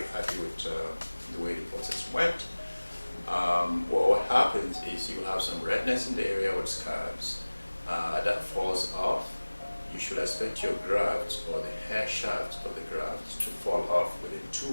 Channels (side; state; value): both; inverted; correlation -1.00